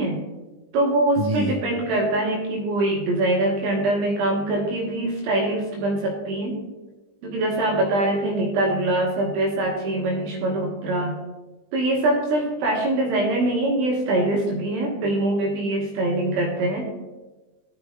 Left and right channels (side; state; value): left; late; 20 ms